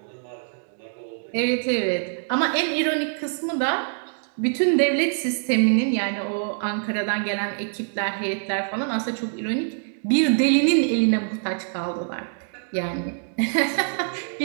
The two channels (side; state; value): left; silent; 62 dB below the other